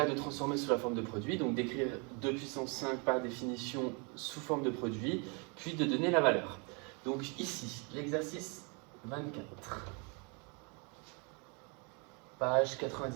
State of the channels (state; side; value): quieter; left; 33.6 dB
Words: de transformer sous la forme de produit, donc d'écrire 2 puissance 5 par définition sous forme de produit, puis de donner la valeur. Donc ici, l'exercice 24, page